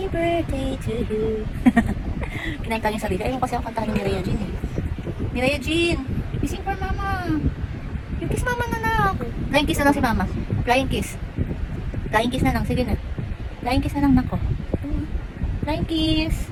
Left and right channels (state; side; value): identical; both; correlation 1.00